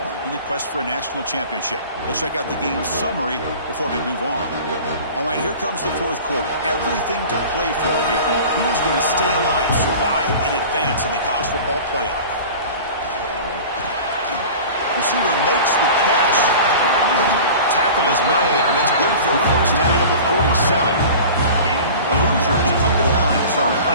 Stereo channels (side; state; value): both; inverted; correlation -0.38